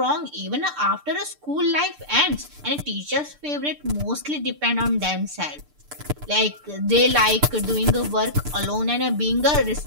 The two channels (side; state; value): left; late; 6.8 ms